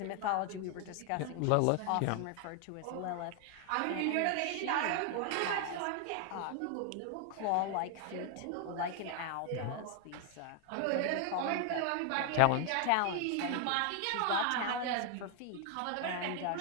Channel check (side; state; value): both; different; correlation 0.00